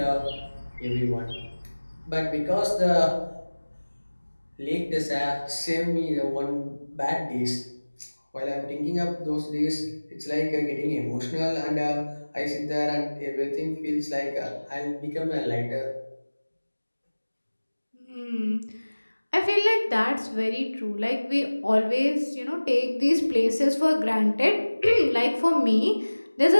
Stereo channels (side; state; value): both; inverted; correlation -1.00